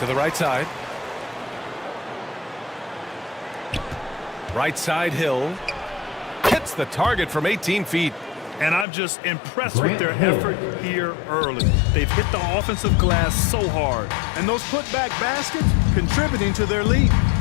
the right side. Right side Hill. Hits the target from 18 feet. And I'm just impressed with their effort here early. They've hit the offensive glass so hard. And those putback baskets contributing to their lead.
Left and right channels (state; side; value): drops out; right; at 8.8 s